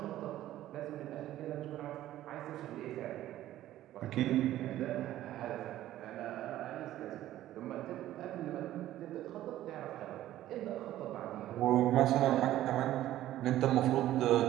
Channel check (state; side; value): quieter; left; 13.7 dB